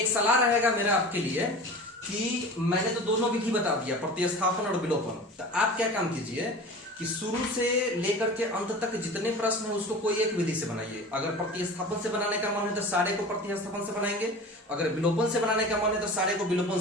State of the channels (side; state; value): both; normal; correlation 0.36